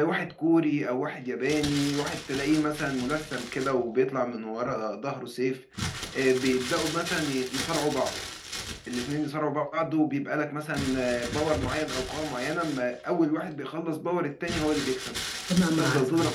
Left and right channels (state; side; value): identical; both; correlation 1.00